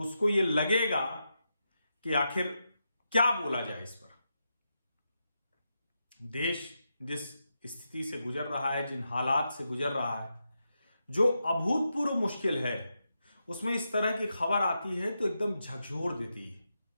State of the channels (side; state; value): both; inverted; correlation -0.86